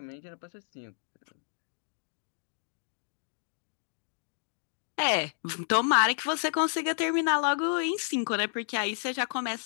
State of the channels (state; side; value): silent; right; digital silence